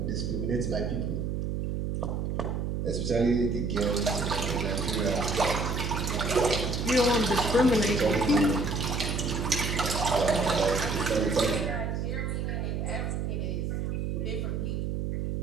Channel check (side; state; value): right; noise; hum, 1 dB below the sound